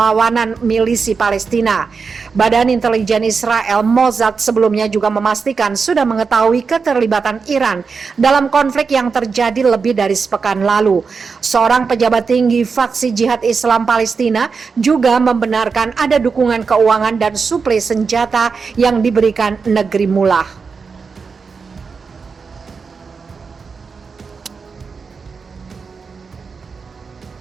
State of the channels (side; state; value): left; quieter; 5.2 dB